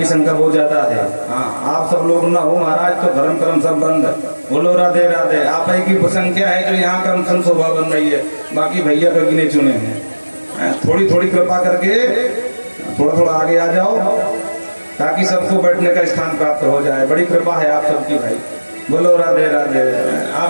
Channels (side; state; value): both; inverted; correlation -1.00